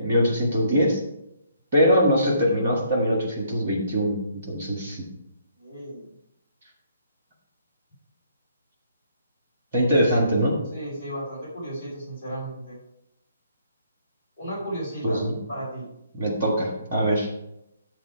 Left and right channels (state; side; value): inverted; both; correlation -0.66